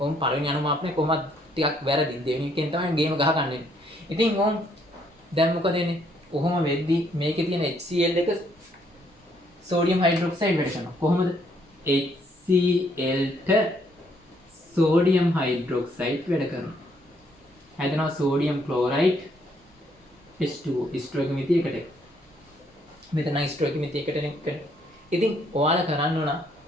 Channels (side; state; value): both; normal; correlation 0.69